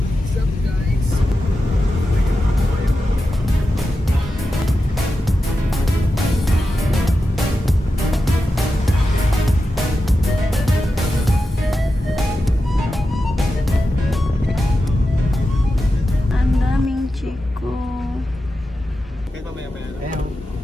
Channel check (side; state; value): both; normal; correlation 0.91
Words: up guys? Ang daming chiko. Kahit mamaya-maya lang. Ayaw.